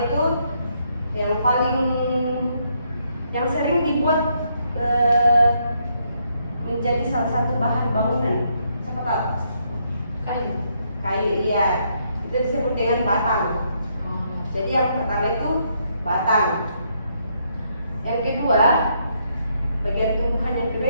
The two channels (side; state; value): both; inverted; correlation -0.74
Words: itu yang sering dibuat menjadi salah satu bahan bangunan. Siapa tahu? Kayu. Kayu, iya. Itu disebut dengan batang. Jadi yang pertama itu batang. Yang kedua, bagian tumbuhan yang kedua